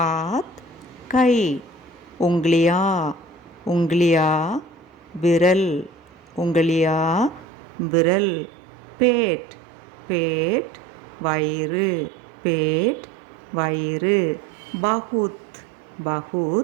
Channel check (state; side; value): drops out; left; at 7.5 s